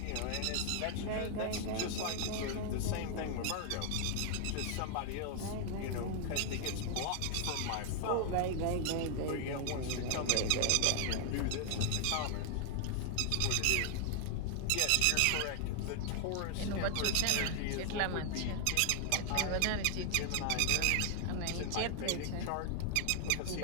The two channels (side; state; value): both; different; correlation 0.00